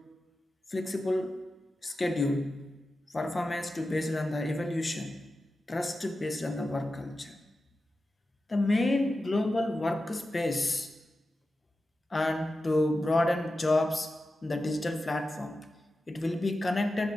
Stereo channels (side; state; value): both; normal; correlation 0.92